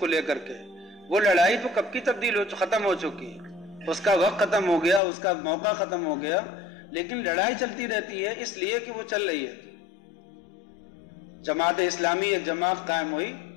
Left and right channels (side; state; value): right; drops out; at 5.0 s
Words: لے کر کے. وہ لڑائی تو کب کی ختم ہو چکی ہے، اس کا وقت ختم ہو گیا، اس کا موقع ختم ہو گیا، لیکن لڑائی چلتی رہتی ہے اس لیے کہ وہ چل رہی ہے. جماعت اسلامی ایک جماعت قائم ہوئی،